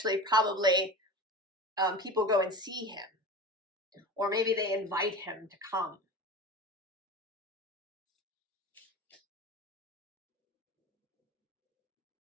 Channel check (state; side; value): normal; both; correlation 0.32